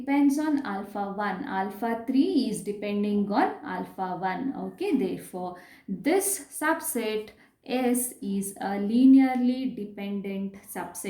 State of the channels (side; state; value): both; identical; correlation 1.00